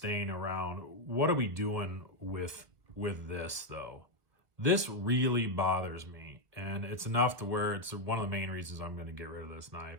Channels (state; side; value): late; left; 1.3 ms